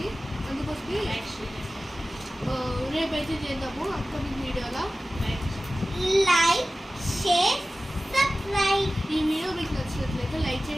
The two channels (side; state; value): both; normal; correlation 0.96